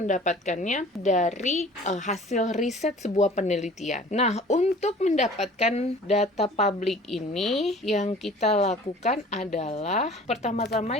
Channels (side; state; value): both; normal; correlation 0.47